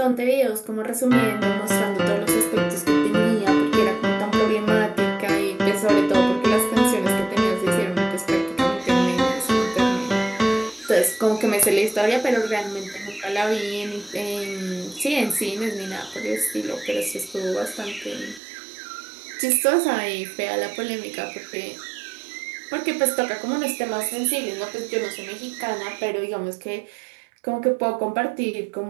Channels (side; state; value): left; drops out; at 18.4 s